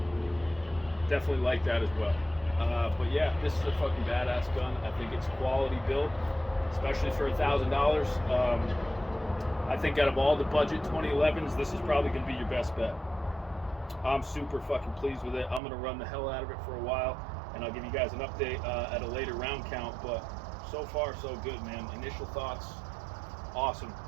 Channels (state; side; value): drops out; left; at 15.6 s